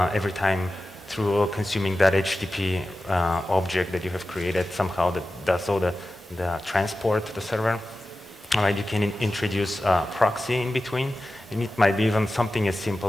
every time through consuming that HTTP object that you have created somehow that does all the transport to the server, you can introduce a proxy in between. And it might be even something as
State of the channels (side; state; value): both; normal; correlation 0.94